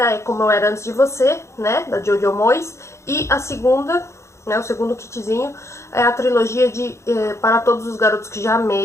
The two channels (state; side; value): late; right; 0.14 ms